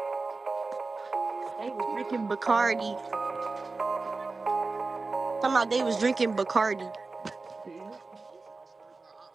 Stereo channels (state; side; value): quieter; left; 3.8 dB